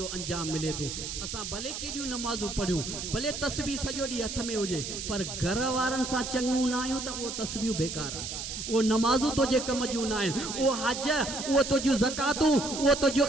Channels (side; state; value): right; noise; hiss, 6 dB below the sound